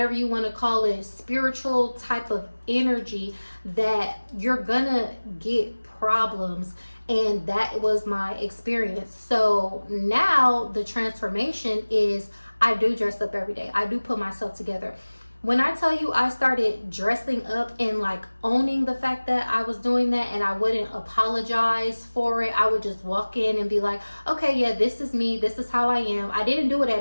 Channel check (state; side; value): inverted; both; correlation -1.00